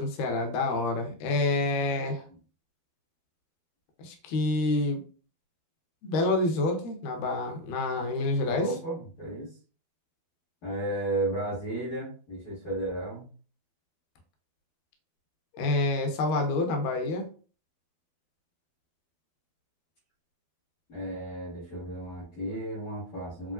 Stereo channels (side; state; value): right; late; 12 ms